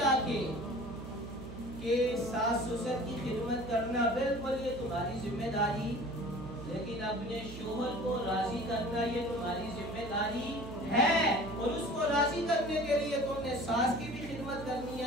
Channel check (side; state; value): right; noise; hum, 11 dB below the sound